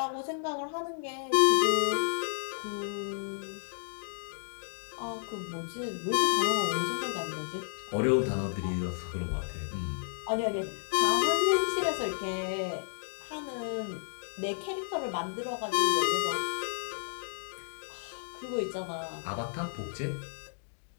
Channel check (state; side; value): silent; right; digital silence